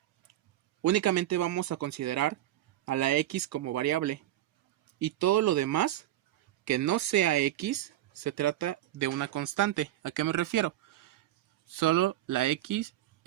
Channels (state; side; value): quieter; left; 13.6 dB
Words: únicamente vamos a considerar a la x como variable. Y todo lo demás, que no sea x, se trata de una constante. ¿A qué me refiero? Solo la x